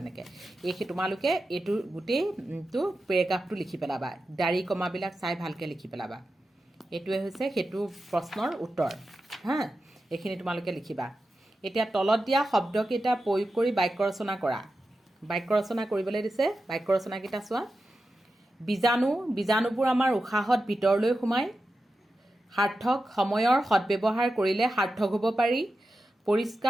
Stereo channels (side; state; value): both; normal; correlation 0.91